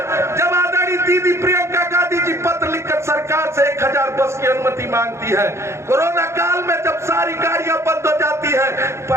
जब आदरणीय दीदी प्रियंका गांधी जी पत्र लिखकर सरकार से 1000 बस की अनुमति मांगती है, कोरोना काल में जब सारी गाड़ियां बंद हो जाती है,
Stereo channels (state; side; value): late; left; 0.13 ms